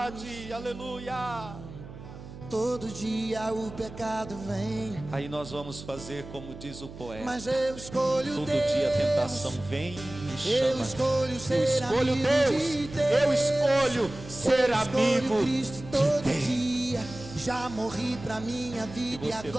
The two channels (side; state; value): right; noise; hum, 14 dB below the sound